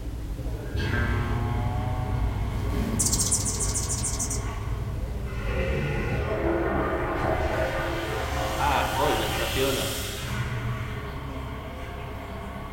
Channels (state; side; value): identical; both; correlation 1.00